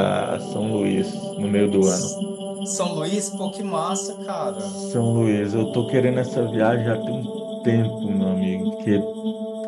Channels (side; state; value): both; identical; correlation 1.00